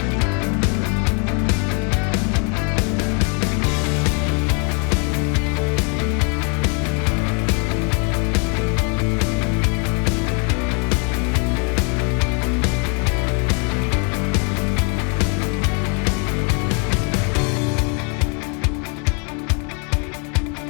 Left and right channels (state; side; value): quieter; right; 36.9 dB